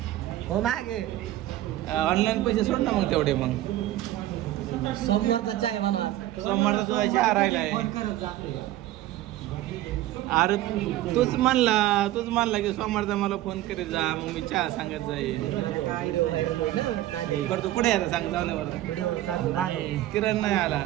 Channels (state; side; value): quieter; left; 14.7 dB